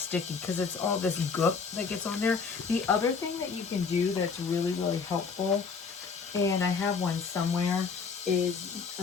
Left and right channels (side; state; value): right; quieter; 5.4 dB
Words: because it's all this goop that gets on there. The other thing that you can do that's really, really helpful, and I have one somewhere, is